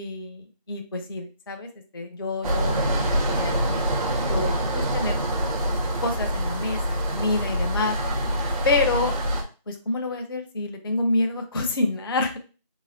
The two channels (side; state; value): both; inverted; correlation -0.59